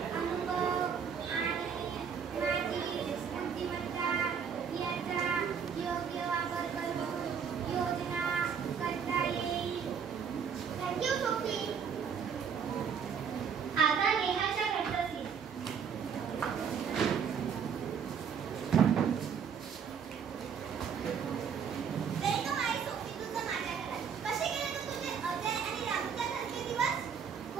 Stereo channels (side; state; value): left; quieter; 7.0 dB